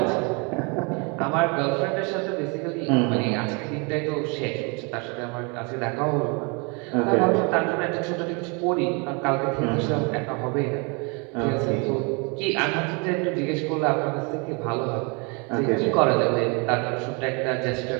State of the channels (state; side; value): quieter; left; 32.0 dB